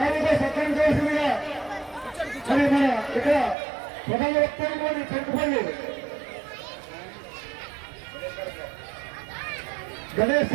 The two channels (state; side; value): drops out; left; at 3.6 s